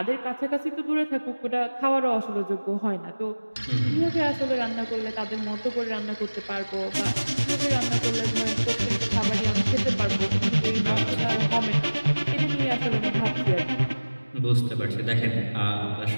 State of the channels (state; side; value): inverted; both; correlation -1.00